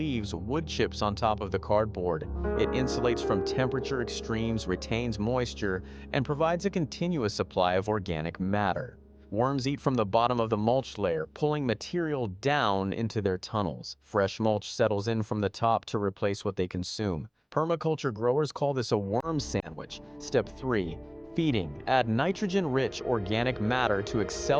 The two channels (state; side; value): identical; both; correlation 1.00